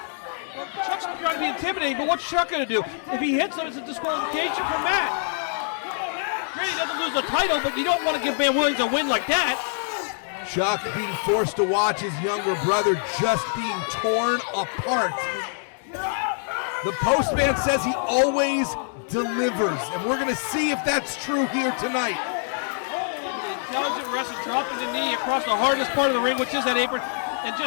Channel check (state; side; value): silent; right; 62 dB below the other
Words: Chuck's trying to be intimidating, but what's Chuck going to do? If he hits him, it's a disqualification for Matt. Great, he doesn't lose the title, but you don't want to give Van Williams a win like that. Chuck being forced to watch his younger brother just being torn apart. The postman says he always delivers, and we're going to see if that's true here tonight. Intelligent wrestler dropping the knee across the hardest part of the ring, which is that apron, and